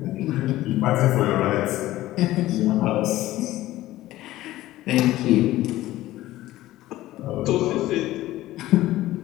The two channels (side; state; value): right; quieter; 15.9 dB